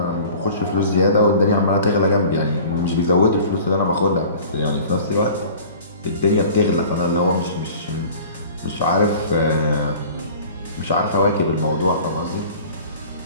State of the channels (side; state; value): both; inverted; correlation -0.44